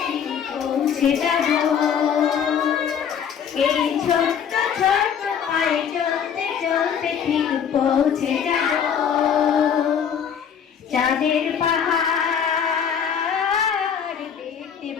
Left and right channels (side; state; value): right; quieter; 7.8 dB